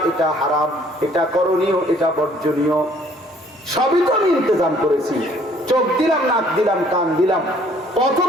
এটা হারাম, এটা করণীয়, এটা বর্জনীয়, সবই তো আমি ইন্তজাম করেছি। চোখ দিলাম, নাক দিলাম, কান দিলাম, পথ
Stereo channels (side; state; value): both; normal; correlation 0.60